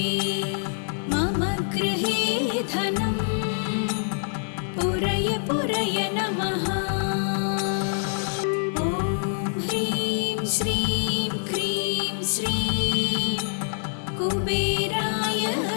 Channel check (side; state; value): right; silent; digital silence